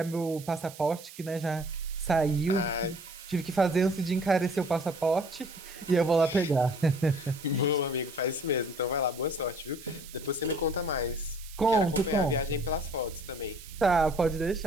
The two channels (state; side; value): noise; right; hiss, 17 dB below the sound